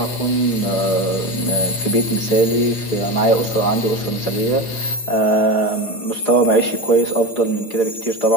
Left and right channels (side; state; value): right; late; 8.7 ms